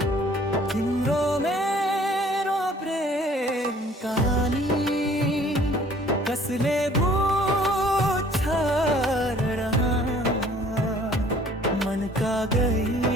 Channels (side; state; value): both; normal; correlation 0.55